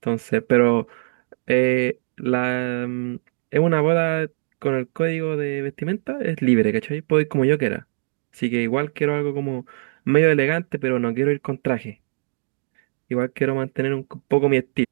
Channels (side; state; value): left; silent; digital silence